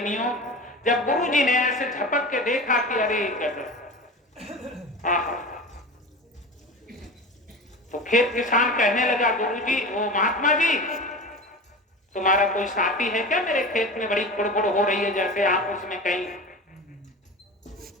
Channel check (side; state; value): both; normal; correlation 0.31